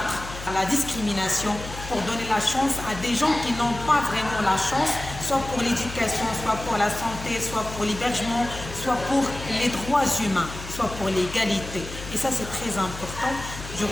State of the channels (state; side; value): noise; left; hum, 11 dB below the sound